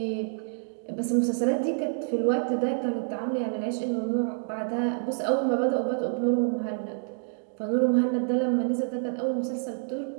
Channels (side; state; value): left; silent; digital silence